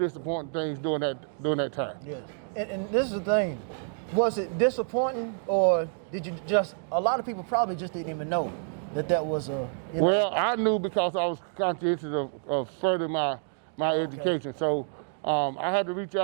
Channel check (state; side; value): silent; left; 59 dB below the other